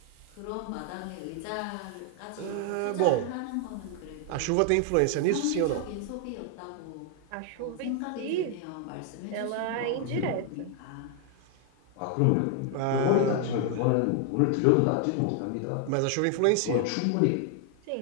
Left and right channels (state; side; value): different; both; correlation 0.00